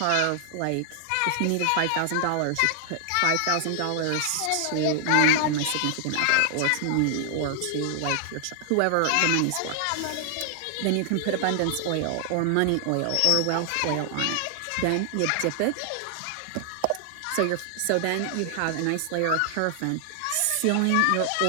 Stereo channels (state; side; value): different; both; correlation 0.00